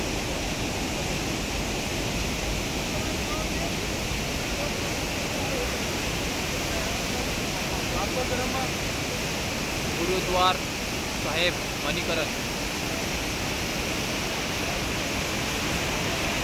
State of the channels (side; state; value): both; identical; correlation 1.00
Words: गुरुद्वार साहेब मणिकरण.